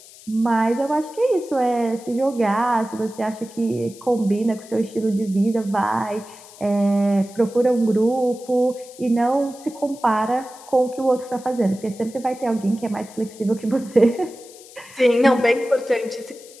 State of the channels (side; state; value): left; noise; hiss, 21 dB below the sound